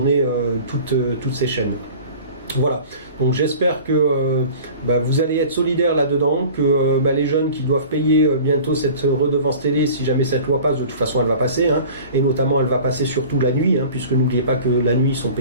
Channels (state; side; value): inverted; both; correlation -0.42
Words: toutes ces chaînes. Voilà, donc j'espère que vous allez être solidaires là-dedans, que les jeunes qui doivent payer bientôt cette redevance télé, si jamais cette loi passe, de toute façon elle va passer, hein, et notamment elle va passer surtout la nuit, hein, puisque n'oubliez pas que la nuit ils sont